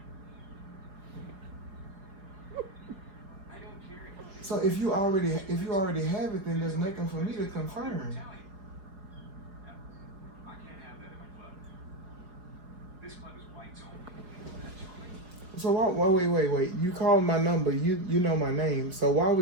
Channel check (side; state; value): left; late; 5.0 ms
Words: So if you already have it, then there's nothing for me to confirm. So wait. You called my number. You know my name. So why